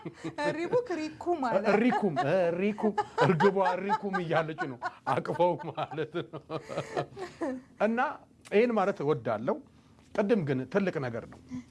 ሪኩም እርግቧ ሪኩም እያለች ነው አቅፈው ማለት ነው እና ይህን ማለት እወዳለሁ ቅድም ግን ትልቅ ነገር ነው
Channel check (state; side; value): identical; both; correlation 1.00